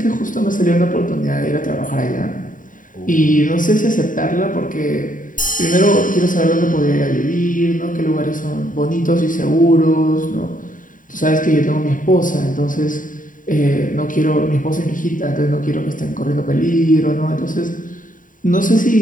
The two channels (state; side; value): late; right; 0.39 ms